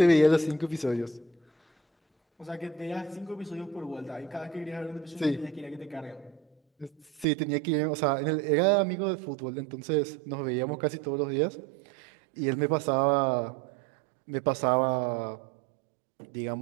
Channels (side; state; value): left; drops out; at 7.2 s